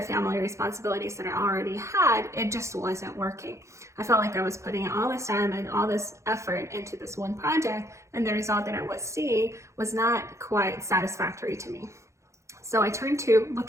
family responsibilities that I already had, it just wasn't working. I felt like I was putting all this time and all this effort into this one project, and the result that I was seeing was not quite satisfactory to me. So I turned to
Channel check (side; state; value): left; late; 0.14 ms